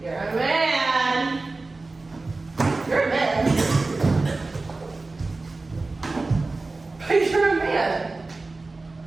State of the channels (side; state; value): left; quieter; 3.4 dB